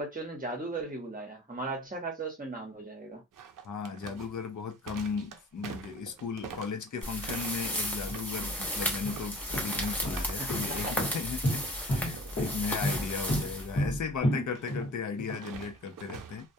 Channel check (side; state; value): both; normal; correlation 0.47